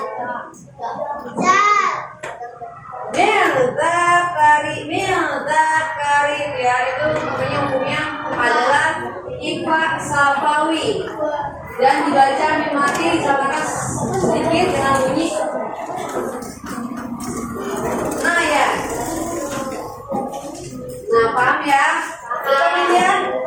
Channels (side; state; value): both; identical; correlation 1.00